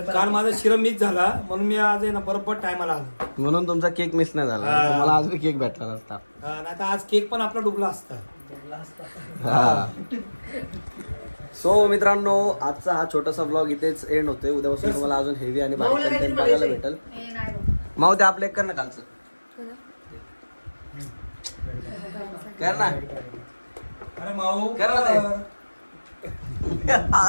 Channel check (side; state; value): both; inverted; correlation -1.00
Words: काल माझा शिरा मिस झाला म्हणून मी आज आहे ना बरोबर टायमाला आलो. म्हणून तुमचा केक मिस नाही झाला. हा. तुम्हाला आज बी केक भेटला नसता. नाही तर आज केक पण आपला डुबला असता. हा. सो मित्रांनो आजचा हा छोटासा ब्लॉग इथेच एंड होतोय. उद्यापासून तुम्हाला अजून हेवी आणि भारी माऊला कंटेंट काहीतरी बघायला बोलायचंय. भेटेल. माऊ ते आपलं एक कर ना कालचं कर ना. अरे माऊ कर ना ते.